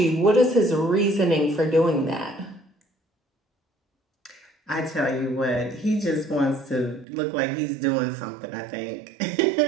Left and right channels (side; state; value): left; drops out; at 7.1 s